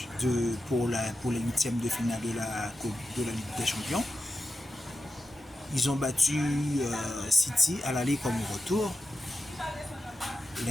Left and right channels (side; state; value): both; normal; correlation 0.91